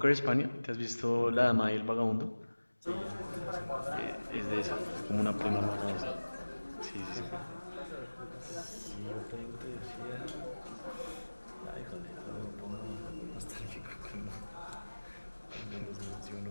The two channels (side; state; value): both; inverted; correlation -1.00